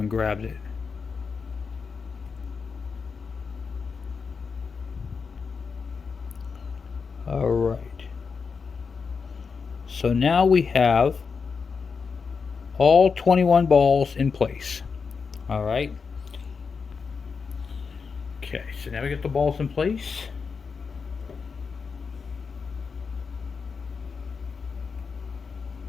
grabbed it. Alright. So now we have all 21 balls in place. All right. Okay, so now we get the balls in place.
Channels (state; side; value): quieter; right; 5.4 dB